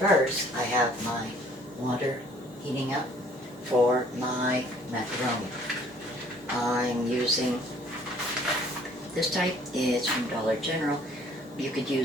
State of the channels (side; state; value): both; normal; correlation 0.58